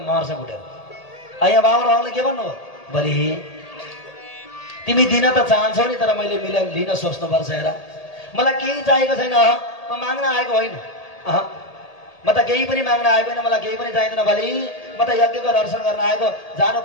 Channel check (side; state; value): right; late; 1.8 ms